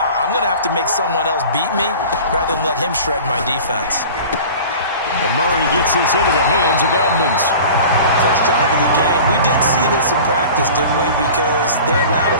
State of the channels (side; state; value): both; inverted; correlation -0.40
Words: I'm going to have to make someone else beat me rather than let him shred my defense. And Murray gets this into the hands of Edmonds. First drive of the game. We did see this in practice, didn't we? Because they allowed